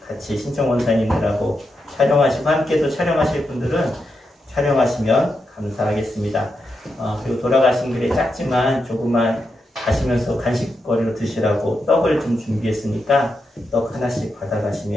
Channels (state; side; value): normal; both; correlation 0.85